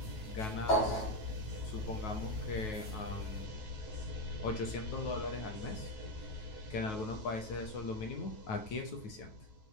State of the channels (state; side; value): late; right; 9.3 ms